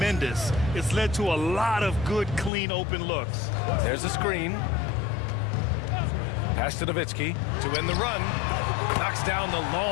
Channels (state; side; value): drops out; right; at 2.5 s